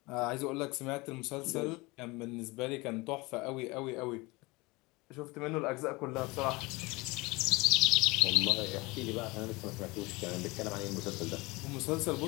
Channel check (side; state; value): right; quieter; 23.8 dB